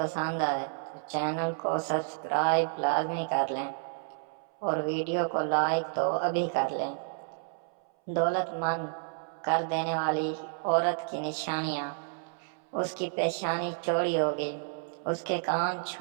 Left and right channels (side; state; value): left; silent; 57 dB below the other